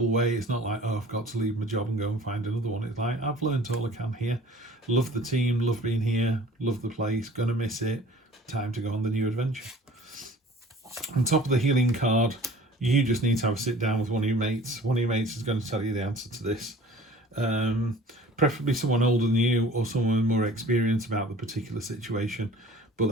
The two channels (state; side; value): normal; both; correlation 0.47